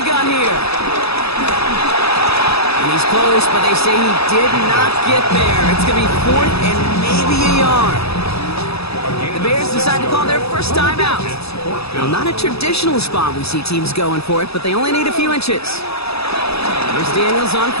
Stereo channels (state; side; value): late; right; 0.78 ms